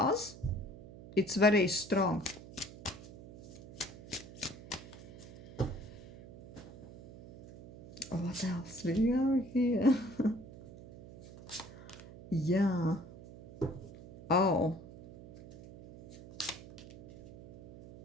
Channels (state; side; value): noise; right; hum, 16 dB below the sound